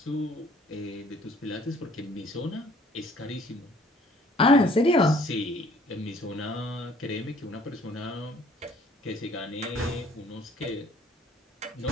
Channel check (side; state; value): both; normal; correlation 0.57